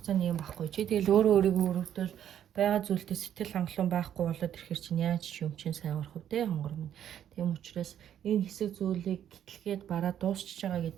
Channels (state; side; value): quieter; left; 10.2 dB